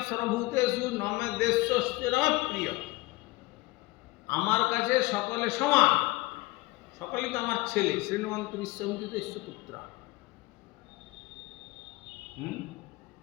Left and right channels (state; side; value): quieter; right; 20.9 dB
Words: সর্বভূতেষু নমে দেশস্তে নমে প্রিয়। আমার কাছে সকলে সমান, সকলেই তো আমার ছেলে। শ্রীনবন্ত বিশ্বমিত পুত্রা।